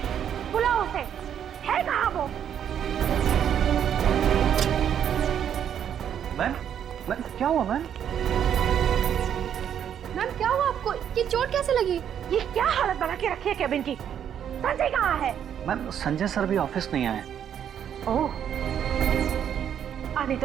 बुलाओ उसे। है कहाँ वो? मैम, मैम क्या हुआ मैम? मैम क्या हुआ आपको? ये चोट कैसे लगी? ये क्या हालत बना के रखी है केबिन की? संजय कहाँ है? मैम संजय सर भी ऑफिस नहीं आए। ओह, आने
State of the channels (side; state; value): left; quieter; 9.1 dB